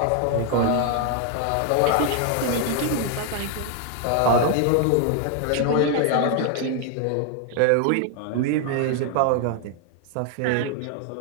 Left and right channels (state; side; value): different; both; correlation 0.00